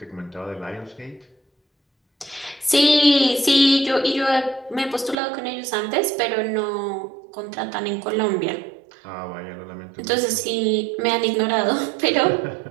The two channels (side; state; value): left; drops out; at 5.2 s